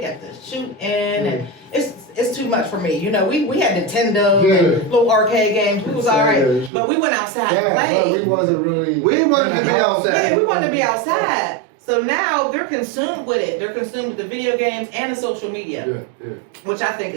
the shooting and it's too much for me. You know, we had Nintendo and little arcade games. We was all right, but we went outside and Yeah, but we played. wasn't really. We wanted to be outside. Yeah, we wanted to be outside. So now they're consumed with it. They're consumed with the video games and the social media, Yeah. which I think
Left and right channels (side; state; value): left; drops out; at 6.7 s